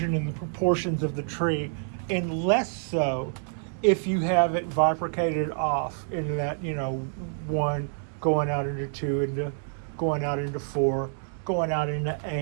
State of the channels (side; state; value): left; silent; digital silence